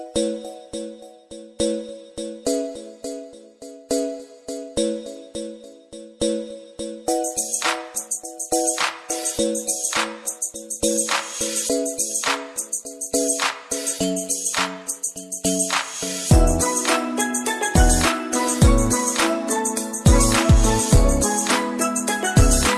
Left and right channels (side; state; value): both; identical; correlation 1.00